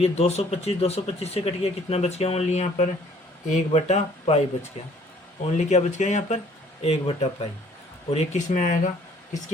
ये 225 से कट गया, कितना बच गया ओनली यहाँ पर 1/पाई बच गया, ओनली क्या बच गया यहाँ पर 1/पाई। और ये किस में आएगा,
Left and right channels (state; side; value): normal; both; correlation 0.58